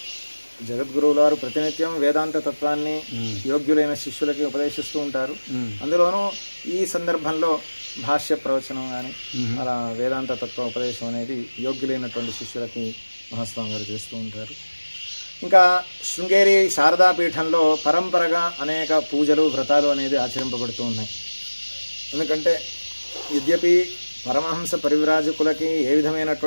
జగద్గురువుల వారు ప్రతినిత్యం వేదాంత తత్వాన్ని యోగ్యులైన శిష్యులకి ఉపదేశిస్తూ ఉంటారు. అందులోనూ ఈ సందర్భంలో భాష్య ప్రవచనం కానీ అలా వేదాంత తత్వ ఉపదేశం అనేది యోగ్యులైనటువంటి శిష్యులకి మహాస్వామి గారు చేస్తూ ఉంటారు. ఇంకా శృంగేరి శారదాపీఠంలో పరంపరగా అనేక పూజలు వ్రతాలు అనేది ఆచరింపబడుతూ ఉన్నాయి. ఎందుకంటే యద్యపి పరమహంస పరివ్రాజకులకి ఏ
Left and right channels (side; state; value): both; inverted; correlation -1.00